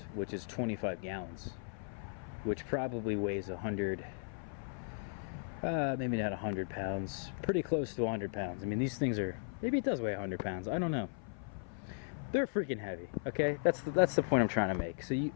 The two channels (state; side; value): silent; right; 53 dB below the other